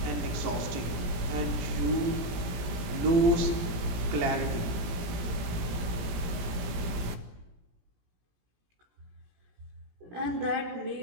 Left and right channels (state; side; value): late; left; 17 ms